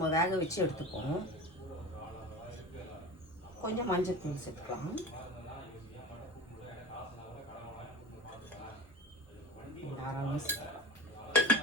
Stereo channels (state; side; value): normal; both; correlation 0.34